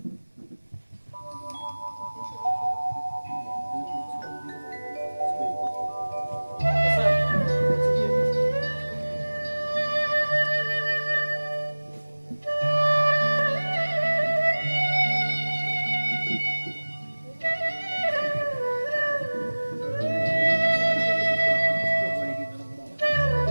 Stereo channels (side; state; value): both; inverted; correlation -1.00